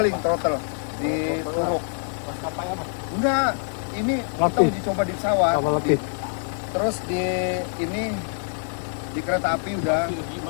throttle di Turuk. Maskapai apa? Enggak, ini kita uji coba di pesawat. Terus di ini di kereta api udah.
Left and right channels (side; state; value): right; silent; 62 dB below the other